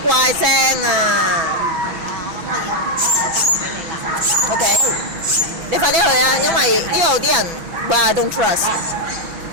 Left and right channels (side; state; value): left; late; 6.0 ms